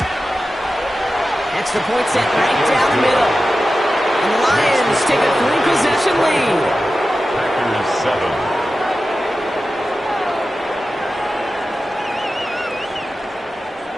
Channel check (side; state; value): both; normal; correlation 0.93